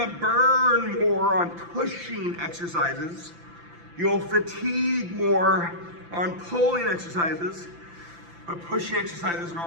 burn more on pushing exercises. You'll fatigue more on pulling exercises, but pushing exercises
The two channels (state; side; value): late; left; 5.9 ms